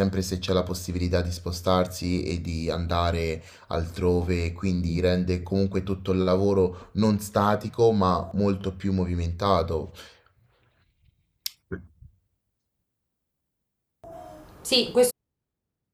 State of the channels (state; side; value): identical; both; correlation 1.00